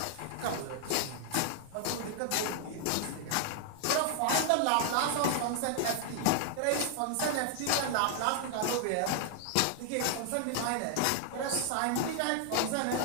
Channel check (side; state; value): both; different; correlation 0.00